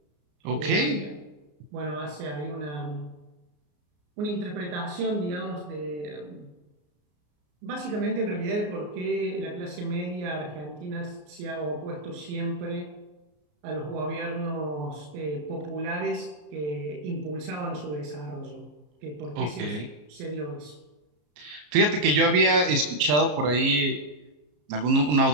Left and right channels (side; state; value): left; late; 34 ms